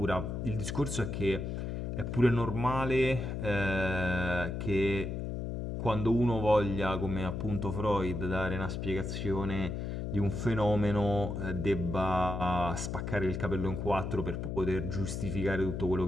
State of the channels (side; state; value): left; noise; hum, 4 dB below the sound